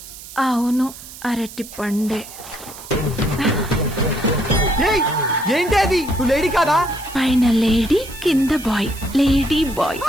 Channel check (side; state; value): right; noise; hiss, 15 dB below the sound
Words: అవును, అరటి పండే. ఏంటి అది? నువ్వు లేడీ కాదా? పైన లేడీ, కింద బాయ్, లేడీ బాయ్.